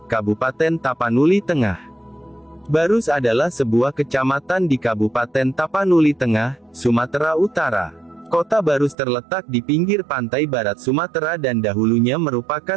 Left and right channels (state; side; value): drops out; left; at 9.0 s